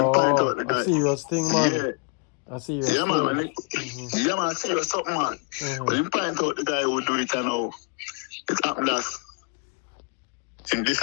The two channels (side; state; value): right; quieter; 36.7 dB